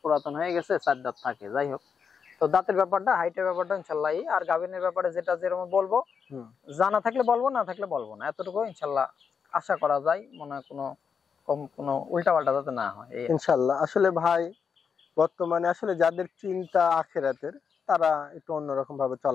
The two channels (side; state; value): right; quieter; 6.4 dB